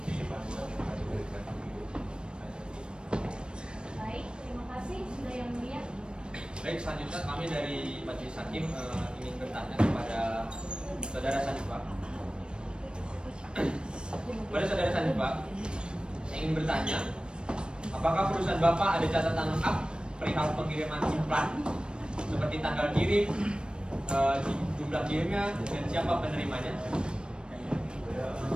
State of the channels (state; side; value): late; left; 0.053 ms